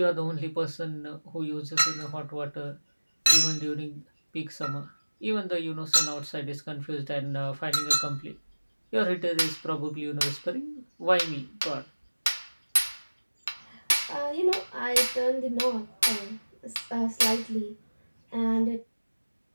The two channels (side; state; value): both; inverted; correlation -1.00